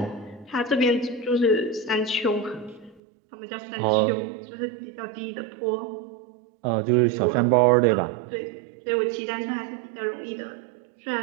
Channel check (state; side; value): drops out; left; at 3.0 s